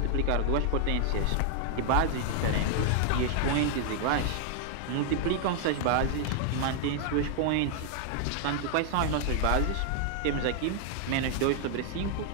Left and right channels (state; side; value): different; both; correlation 0.00